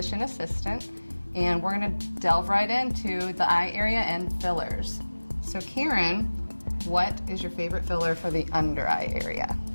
assistant, and we're going to delve right into the eye area and fillers. So Karen, what is your favorite filler for the under eye area?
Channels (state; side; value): inverted; both; correlation -1.00